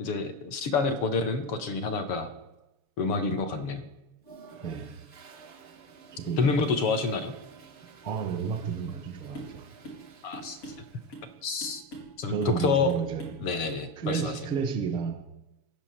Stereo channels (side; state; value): right; late; 7.0 ms